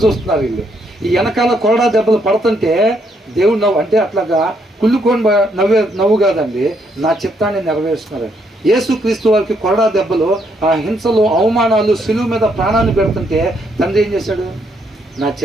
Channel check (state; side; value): normal; both; correlation 0.73